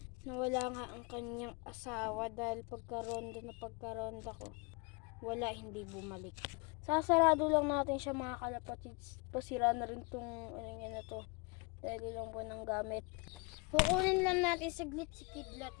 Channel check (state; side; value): quieter; right; 29.1 dB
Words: nga ang kanyang asawa dahil pagkaronda ko. Wala, hindi bumalik. Sasarado lang natin siya mga kalapatids. Pasira na rin tong na to. Dahil lang po ng gamit. Kukunin lang natin saglit si Kidlat